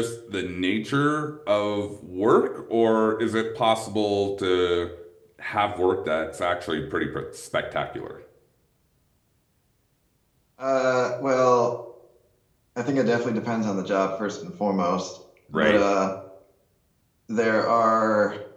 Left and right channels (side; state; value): both; identical; correlation 1.00